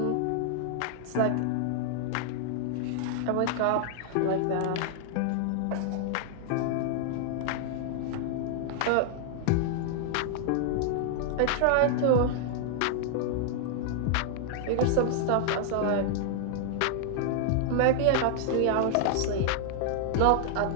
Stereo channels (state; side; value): different; both; correlation -0.01